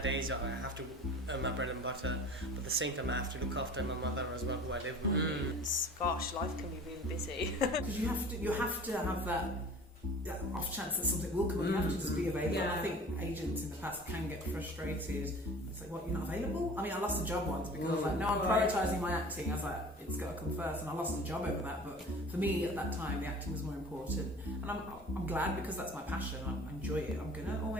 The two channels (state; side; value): normal; both; correlation 0.43